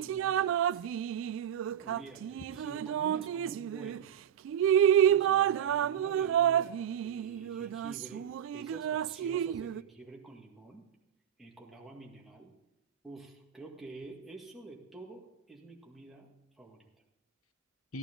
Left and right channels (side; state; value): left; quieter; 9.5 dB